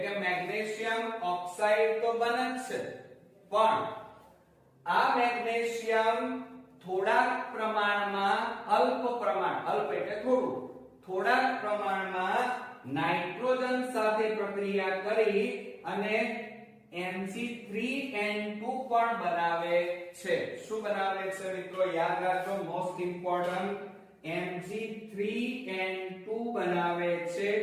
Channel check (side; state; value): both; identical; correlation 1.00